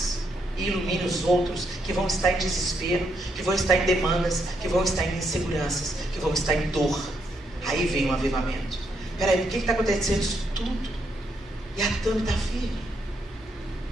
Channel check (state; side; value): normal; both; correlation 0.77